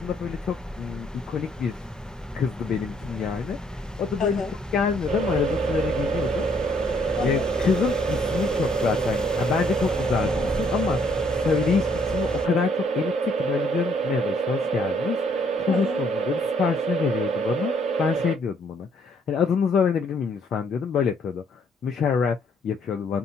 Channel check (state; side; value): normal; both; correlation 0.66